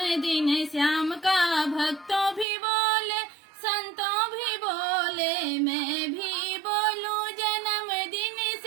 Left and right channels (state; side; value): drops out; left; at 2.5 s